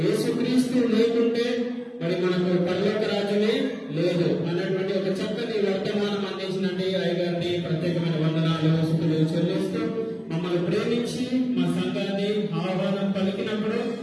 యేసుక్రీస్తు లేకుంటే మరి మనకు పరలోక రాజ్యమే లేదు అన్నటువంటి ఒక చక్కని వర్తమానం అందించినట్టు అయ్యగారిని ప్రత్యేకమైన వందనాలు, స్తుతులు చెల్లిస్తూ మమ్మల్ని ప్రేమించి మా సంఘాన్ని ఆహ్వానం పలికినప్పుడు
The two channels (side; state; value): both; identical; correlation 1.00